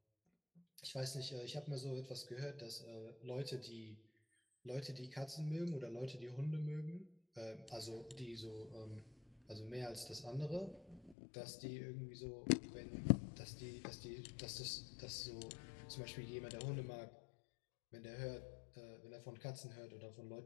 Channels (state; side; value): drops out; right; at 11.2 s